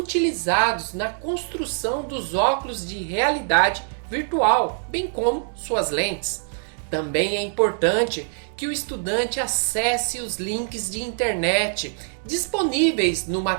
na construção dos óculos de realidade virtual, bem como suas lentes. Também é importante que o estudante acesse os links de internet disponíveis no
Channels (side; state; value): left; silent; digital silence